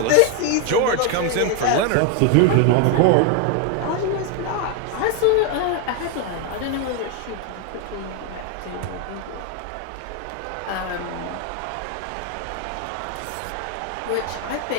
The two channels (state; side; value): different; both; correlation 0.01